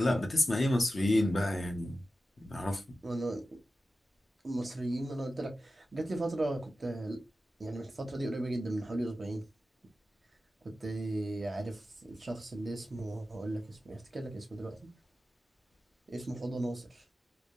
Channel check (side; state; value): both; normal; correlation 0.93